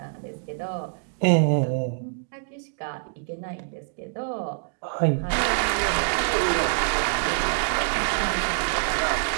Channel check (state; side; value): silent; left; digital silence